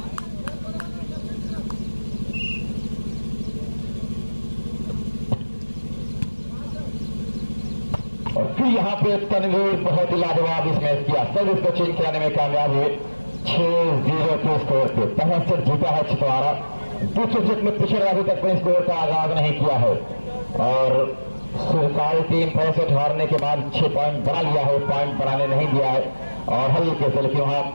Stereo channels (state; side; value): inverted; both; correlation -1.00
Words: और फिर यहाँ पे तनवीर बहुत ही लाजवाब इस मैच किया, सब इसको चेंज कराने में कामयाब हुए 6-0 के स्कोर पे। पहला सेट जीता है छितवाड़ा। दूसरे सेट में पिछड़े अभी तक अपने स्कोर का आगाज नहीं किया है और सुरसाल टीम पहले सेट हारने के बाद 6 पॉइंट बना लिया है, पॉइंट बनाने नहीं दिया है और हल्के से लेकिन वहां